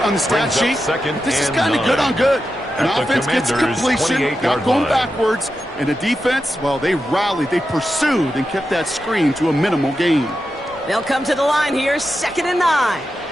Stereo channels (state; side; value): normal; both; correlation 0.89